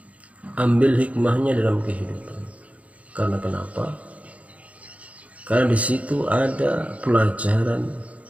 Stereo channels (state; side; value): late; left; 0.066 ms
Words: dalam kehidupan. Karena kenapa? Karena di situ ada pelajaran